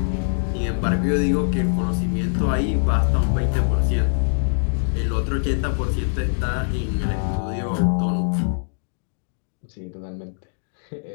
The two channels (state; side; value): silent; right; digital silence